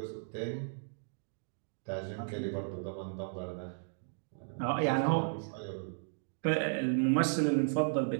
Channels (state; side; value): silent; left; digital silence